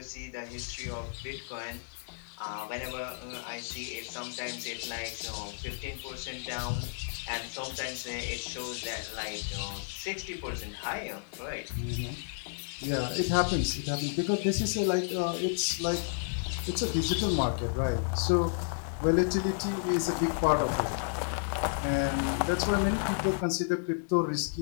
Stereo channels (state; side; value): silent; right; digital silence